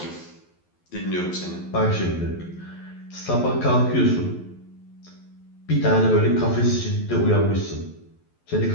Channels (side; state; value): right; late; 11 ms